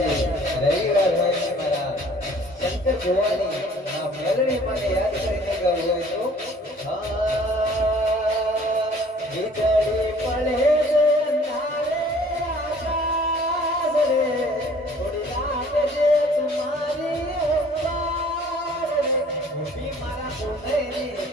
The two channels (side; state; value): both; normal; correlation 0.54